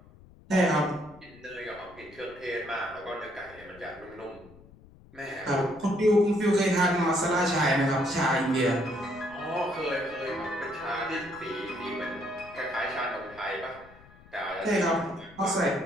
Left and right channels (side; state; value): left; noise; rumble, 23 dB below the sound